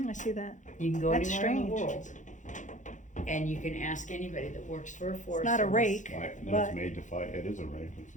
I see that. You can go That's anywhere in the strange. world, and you can ask anybody that works for a forest. not a service. rake. Why- no, But- it's made to fight. It is a rake. It's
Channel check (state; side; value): late; right; 0.36 ms